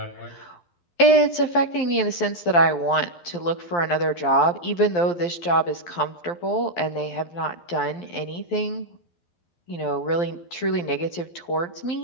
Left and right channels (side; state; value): right; late; 12 ms